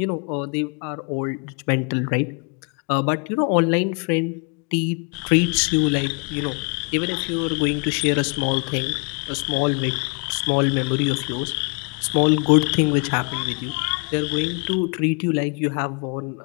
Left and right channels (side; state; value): right; quieter; 36.3 dB